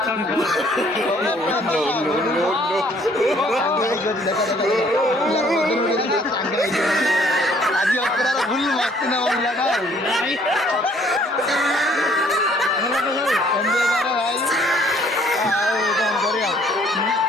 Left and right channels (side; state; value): both; normal; correlation 0.61